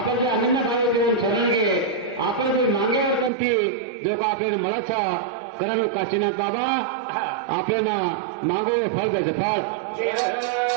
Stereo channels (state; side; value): drops out; left; at 3.3 s